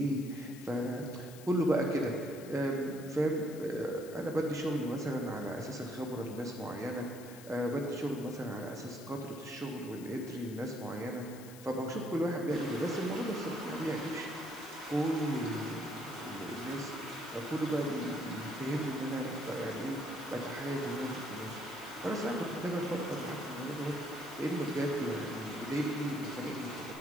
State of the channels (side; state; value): left; noise; hiss, 17 dB below the sound